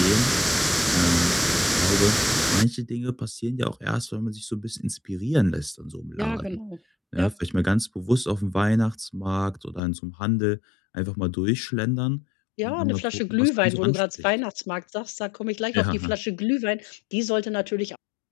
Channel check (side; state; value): right; drops out; at 9.8 s